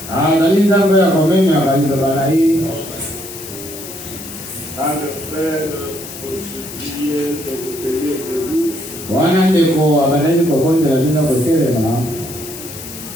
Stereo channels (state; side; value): noise; left; hiss, 12 dB below the sound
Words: Analinda mbele ya komeni akalito bana hii. À le faire pour supplier de vous payer de lui. Wana ndeko abaleni kokonza lazima kutelema.